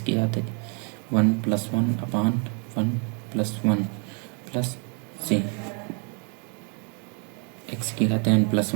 की घात 1 प्लस 1 अपान 1 प्लस 1 प्लस सी, एक्स की घात n प्लस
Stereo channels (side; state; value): left; quieter; 37.5 dB